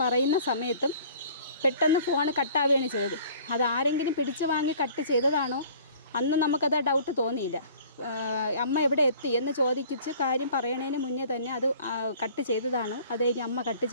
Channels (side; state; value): both; inverted; correlation -0.50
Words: പറയുന്ന സമയത്തും പെട്ടെന്ന് ഫോൺ കട്ടാവുകയാണ് ചെയ്തത്. അത് ആരെങ്കിലും പിടിച്ച് വാങ്ങി കട്ട് ചെയ്തതാണോ അന്ന് നമുക്കത് ഡൗട്ട് തോന്നിയില്ല. അമ്മ എവിടെ എത്തി എന്ന് ചോദിച്ച് കാര്യം പറയണതിന് മുന്നേ തന്നെ അത് കട്ട് ചെയ്തതാണോ അതേ അമ്മ കട്ട്